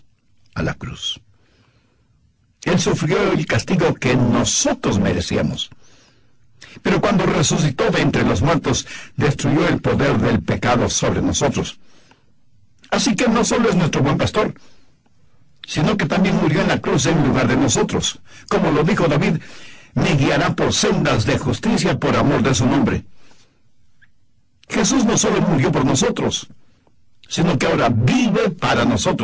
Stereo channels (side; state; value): both; identical; correlation 1.00